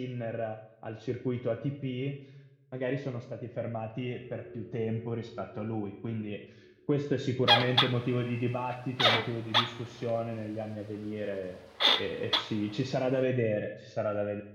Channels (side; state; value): both; identical; correlation 1.00